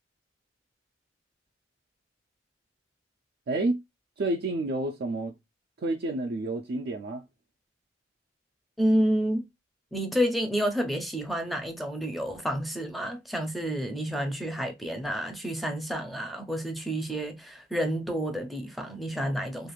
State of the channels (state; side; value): normal; both; correlation 0.78